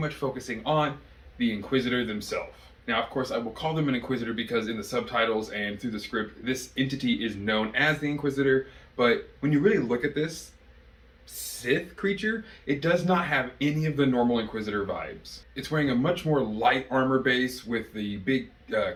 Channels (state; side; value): identical; both; correlation 1.00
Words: focusing on the Inquisitor themselves. Now, of course, I will call them an Inquisitor because in the subtitles and through the script, this entity is known as the Inquisitor, but when you really look at this Sith creature, it does not have any of the normal Inquisitor vibes. It's wearing a much more light armor base with the big